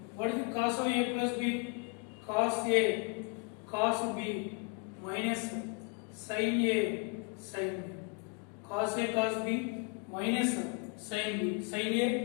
What is the cos of A plus B? Cos A cos B minus sin A sin B. Cos A cos B minus sin B. Sin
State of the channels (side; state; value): right; quieter; 32.2 dB